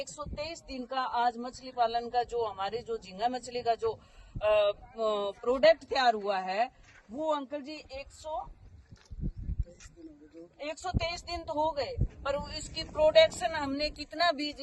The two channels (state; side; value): identical; both; correlation 1.00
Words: 123 दिन का आज मछली पालन का जो हमारे जो झींगा मछली का जो प्रोडक्ट तैयार हुआ है वो अंकल जी 123 दिन तो हो गए, पर इसकी प्रोडक्शन हमने कितना बीज